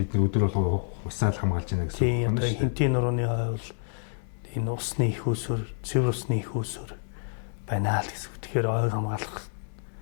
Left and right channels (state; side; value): silent; right; 59 dB below the other